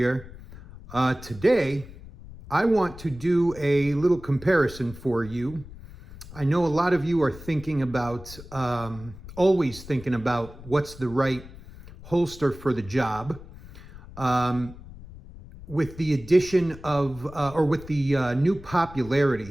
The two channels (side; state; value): left; noise; rumble, 17 dB below the sound